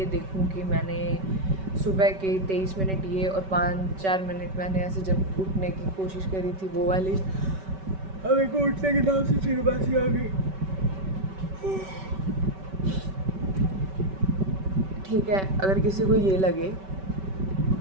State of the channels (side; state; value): left; late; 5.2 ms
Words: देखूं कि मैंने सुबह के 23 मिनट ये और 5-4 मिनट मैंने ऐसे जब उठने की कोशिश करी थी वो वाली, अब एक उठने के नाम से फिर बासी आ गई, ठीक है। अगर किसी को ये लगे,